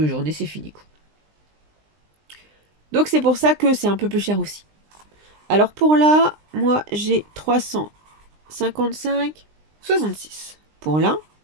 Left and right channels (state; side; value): late; left; 20 ms